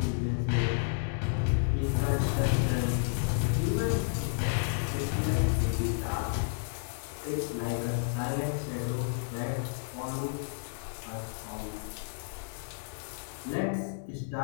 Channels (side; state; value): right; silent; 57 dB below the other